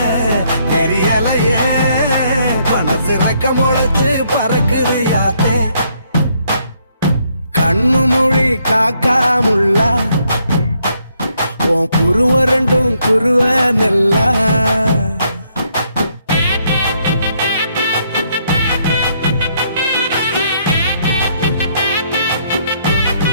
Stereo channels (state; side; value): inverted; both; correlation -0.72